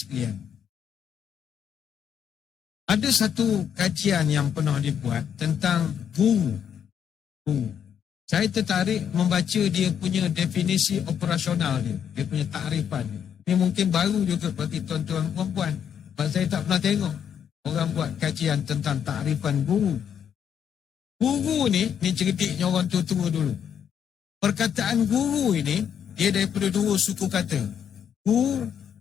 ada satu kajian yang pernah dibuat tentang guru. Saya tertarik membaca dia punya definisi operasional dia punya takrifan. Ini mungkin baru juga bagi tuan-tuan perempuan. Sebab saya tak pernah tengok orang buat kajian tentang takrifan guru. Guru ni ceritanya orang tua-tua dulu. Perkataan guru ini, dia daripada dua suku kata. Gu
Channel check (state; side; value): quieter; right; 8.4 dB